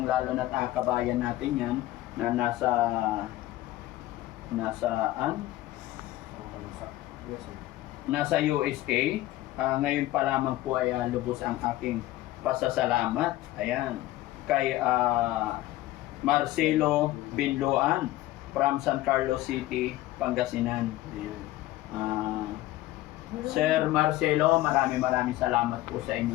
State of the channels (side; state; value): right; quieter; 16.2 dB